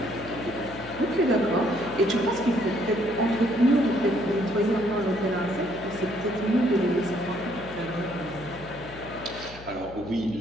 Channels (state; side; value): noise; left; hum, 17 dB below the sound